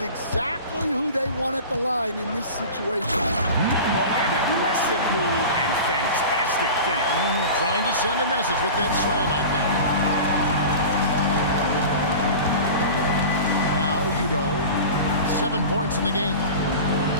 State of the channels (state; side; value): inverted; both; correlation -0.34